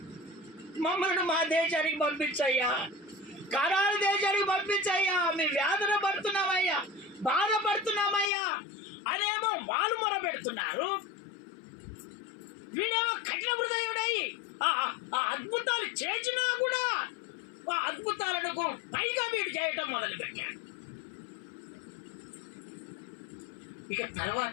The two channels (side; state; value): right; drops out; at 8.3 s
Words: మమ్మల్ని మా దేశానికి పంపించయ్యా, కరారు దేశానికి పంపించయ్యా, మేము వేదన పడుతున్నామయ్యా, బాధపడుతున్నామయ్యా అనేమో వాళ్ళు మొర పెడుతున్నారు. వీడేమో కఠిన హృదయుడై ఆ అద్భుతాలు చేసినా కూడా ఆ అద్భుతాలకు పైగా వీడు చేయటం మొదలుపెట్టాడు. ఇక